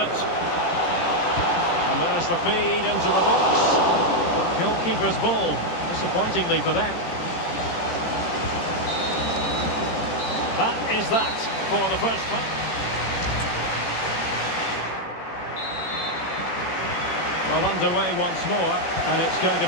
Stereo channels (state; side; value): late; right; 18 ms